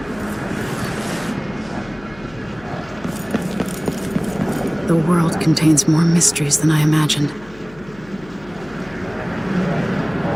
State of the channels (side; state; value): left; noise; hum, 22 dB below the sound